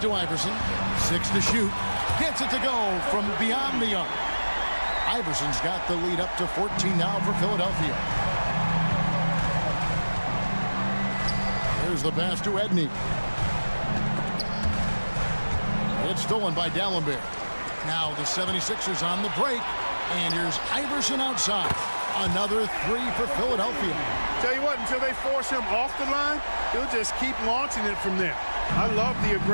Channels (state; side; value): inverted; both; correlation -1.00